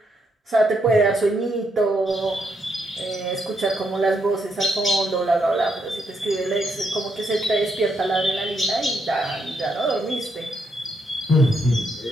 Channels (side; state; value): both; normal; correlation 0.77